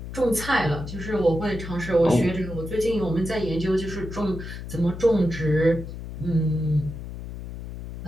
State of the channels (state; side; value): noise; left; hum, 10 dB below the sound